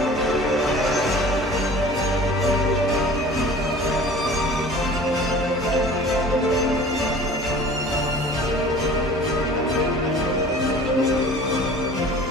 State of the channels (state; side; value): normal; both; correlation 0.44